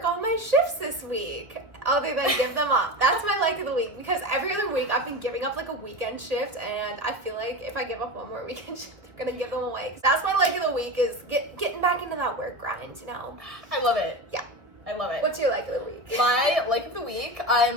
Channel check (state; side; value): late; left; 1.6 ms